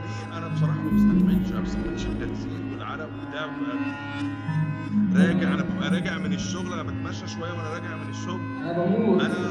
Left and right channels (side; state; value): both; identical; correlation 1.00